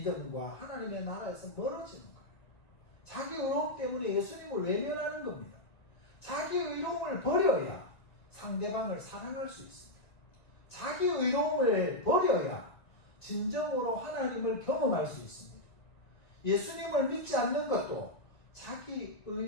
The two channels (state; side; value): late; right; 2.1 ms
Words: 하나님의 나라에서 멀어지는 거예요. 자기 의로움 때문에 예수님을 외면하는 겁니다. 자기 의로움을 버려야 상대방을 사랑할 수 있습니다. 자기 의로움을 버려야 진정으로 하나님을 경험할 수 있습니다. 예수님을 믿지 않는 것도 자기